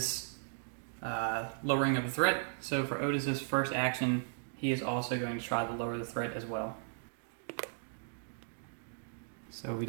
lowering of the threat. So for Otis's first action, he is also going to try to lower the threat as well. So we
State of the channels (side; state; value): left; silent; digital silence